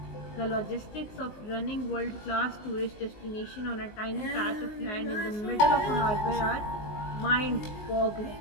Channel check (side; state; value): right; late; 19 ms